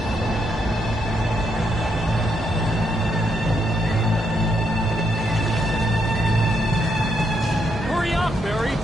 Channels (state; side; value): normal; both; correlation 0.78